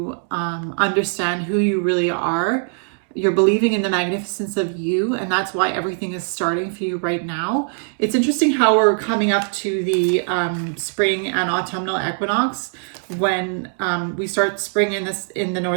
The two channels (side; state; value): left; silent; 56 dB below the other